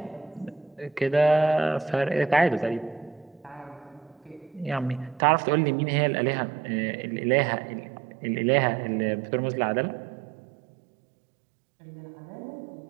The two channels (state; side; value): drops out; left; at 5.2 s